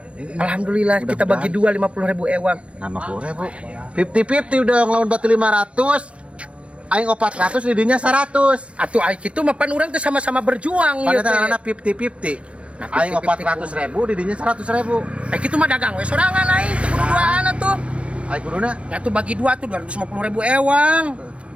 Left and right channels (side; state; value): left; late; 0.061 ms